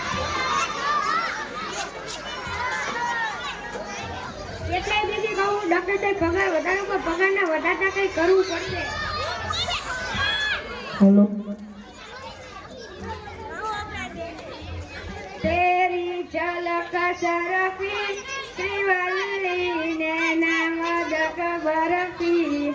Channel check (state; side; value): identical; both; correlation 1.00